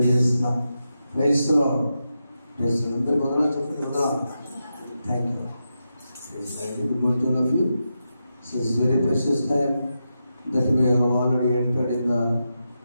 Praise the Lord. అందరికీ వందనాలు చెప్పండి. వందనాలు. Thank you. Good morning to all of you. So it's very precious time that we have already entered in the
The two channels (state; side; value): inverted; both; correlation -0.88